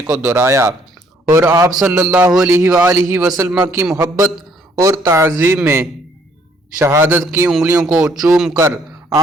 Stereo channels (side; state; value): both; normal; correlation 0.65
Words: کو دہرایا اور آپ صلی اللہ علیہ وآلہ وسلم کی محبت اور تعظیم میں شہادت کی انگلیوں کو چوم کر